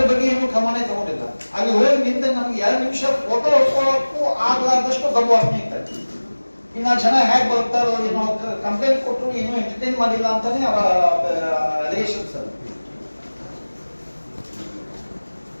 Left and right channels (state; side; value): inverted; both; correlation -1.00